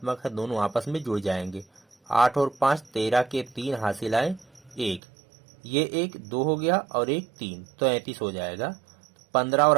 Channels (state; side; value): drops out; left; at 5.0 s